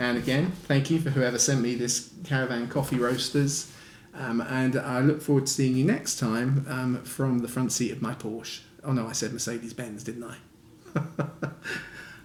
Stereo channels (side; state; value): both; identical; correlation 1.00